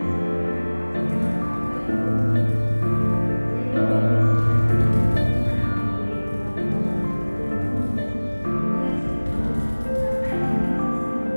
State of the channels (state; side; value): inverted; both; correlation -1.00